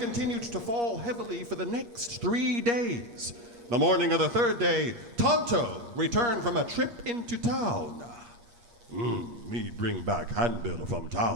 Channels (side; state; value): left; late; 8.5 ms